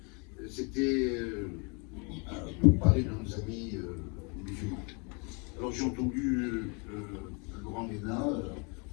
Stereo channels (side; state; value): right; quieter; 33.4 dB